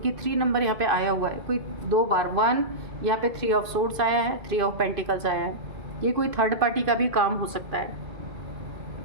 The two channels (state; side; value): late; left; 2.5 ms